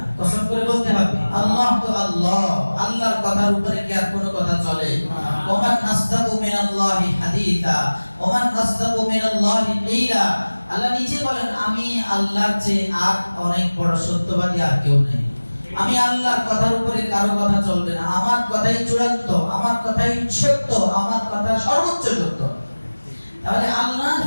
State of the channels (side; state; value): both; inverted; correlation -1.00